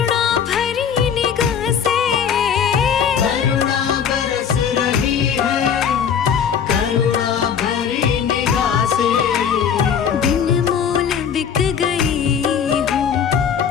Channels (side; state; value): right; quieter; 7.7 dB